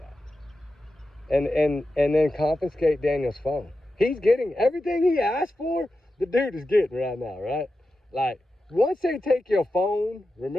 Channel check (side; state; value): both; normal; correlation 0.91